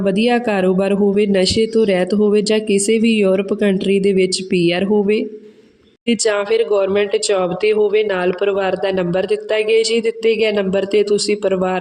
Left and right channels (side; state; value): both; identical; correlation 1.00